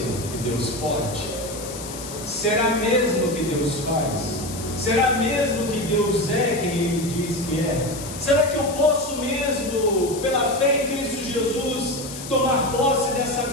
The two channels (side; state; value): left; noise; hiss, 11 dB below the sound